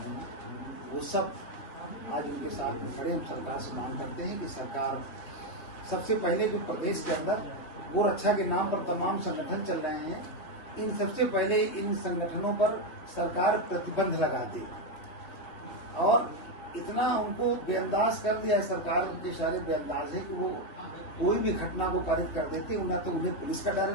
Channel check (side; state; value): right; late; 3.5 ms